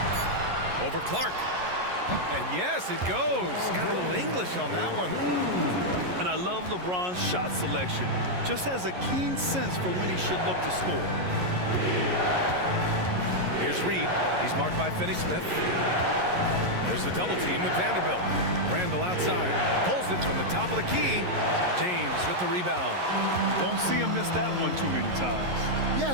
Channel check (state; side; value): late; left; 11 ms